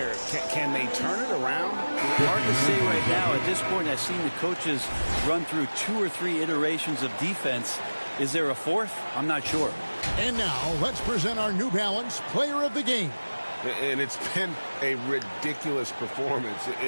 Can they turn it around? Hard to say right now. At this point, I've seen the coaches run through 2 or 3 iterations of defense. Is there a fourth? I'm not sure. And now let's present our New Balance Player of the Game. And it's been a ridiculous performance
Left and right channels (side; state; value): both; inverted; correlation -1.00